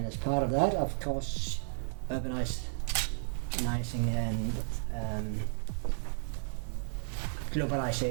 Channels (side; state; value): left; silent; digital silence